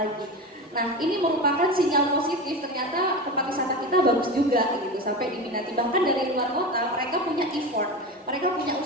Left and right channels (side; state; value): both; normal; correlation 0.25